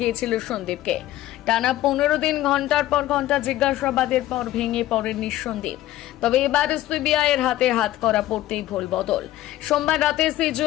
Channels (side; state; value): right; quieter; 14.7 dB